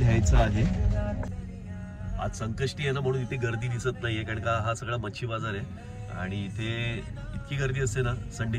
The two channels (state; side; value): identical; both; correlation 1.00